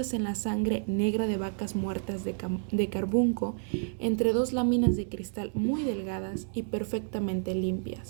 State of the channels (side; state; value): left; silent; 58 dB below the other